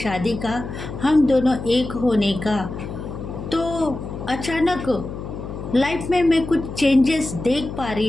का, हम दोनों एक होने का, तो अचानक लाइफ में मैं कुछ चेंजेस देख पा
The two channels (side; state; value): left; noise; hum, 9 dB below the sound